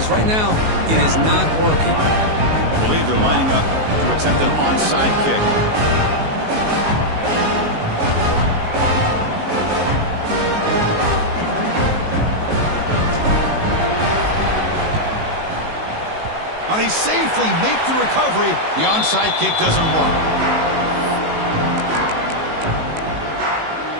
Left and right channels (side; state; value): left; late; 19 ms